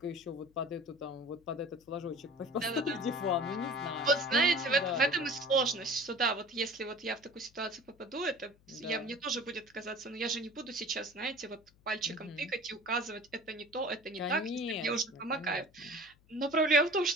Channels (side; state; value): left; noise; hum, 30 dB below the sound